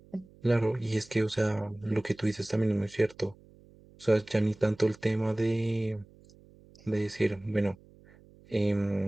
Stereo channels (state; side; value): noise; right; hum, 25 dB below the sound